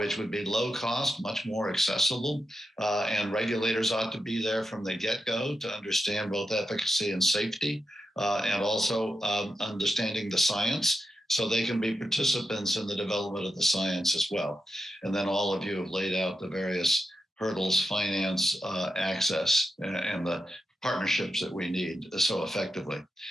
would be low cost, much more accessible, and regulators ought to be there from the get-go to understand both efficacy and safety, and also understanding the science, so they can be participants in the development of the science as well. And then all of you have laid out the various hurdles, finance, access, and the partnerships that we need so effectively.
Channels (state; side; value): normal; both; correlation 0.87